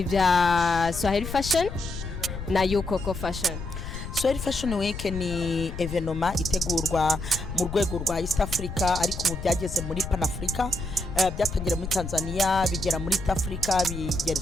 Swahili fashion na Yukoko fashion. Swahili Fashion Week ni evenoma itegurwa mu rwego rwa East Africa, ariko mu byageze muri Pan Africa. Byatangira muri Tanzania bigera muri East Africa,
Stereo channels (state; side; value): noise; left; rumble, 8 dB below the sound